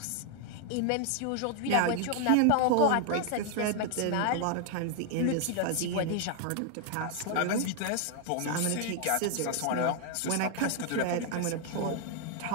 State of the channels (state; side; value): different; both; correlation 0.00